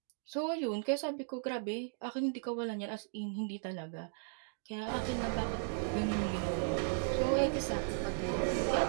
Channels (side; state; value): left; silent; digital silence